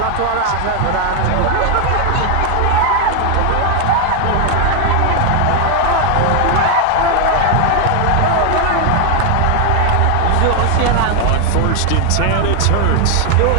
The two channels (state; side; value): different; both; correlation 0.01